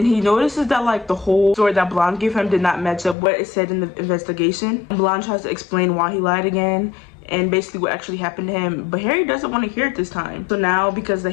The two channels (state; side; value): drops out; right; at 3.2 s